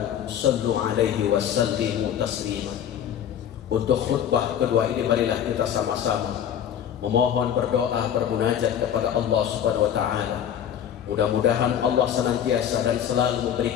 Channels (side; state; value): right; quieter; 9.5 dB